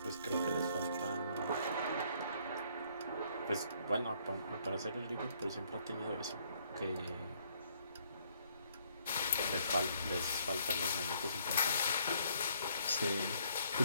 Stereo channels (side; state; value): both; inverted; correlation -0.67